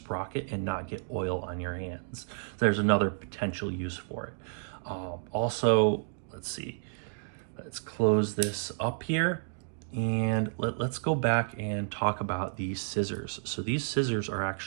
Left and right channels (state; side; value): silent; left; digital silence